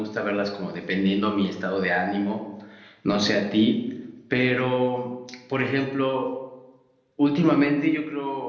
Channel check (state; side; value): identical; both; correlation 1.00